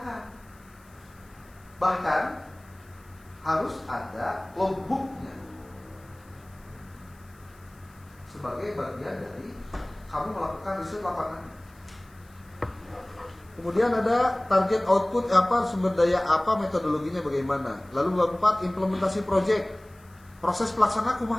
Bahkan harus ada logbooknya sebagai bagian dari kamu melakukan riset lapangan. Kemudian ada target output apa, sumber daya apa, metodologinya bagaimana. Lalu bab 4 implementasi proyek, proses pelaksanaan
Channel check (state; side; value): noise; left; hiss, 29 dB below the sound